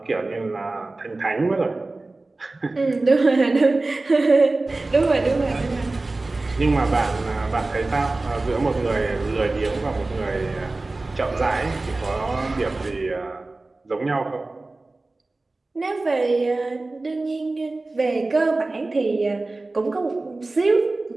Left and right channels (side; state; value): left; quieter; 3.2 dB